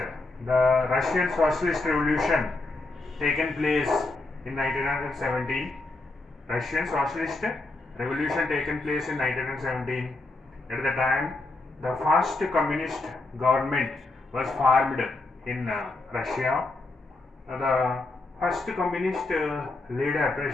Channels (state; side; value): quieter; right; 3.1 dB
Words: Russian socialist revolution taken place in 1917? Russian socialist revolution taken place in 1917. At the time, the first communist government was formed in Russia. The first communist leader,